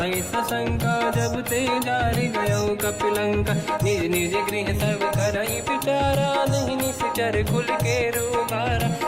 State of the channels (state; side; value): identical; both; correlation 1.00